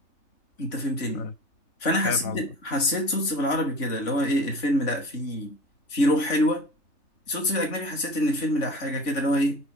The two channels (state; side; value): late; right; 3.5 ms